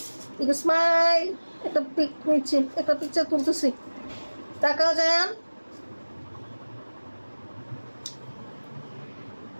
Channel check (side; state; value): both; inverted; correlation -1.00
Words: একটু স্মাইল, একটা পিক নিচ্ছি, একটা পিকচার তুলতেছি। তাকাও জায়ান।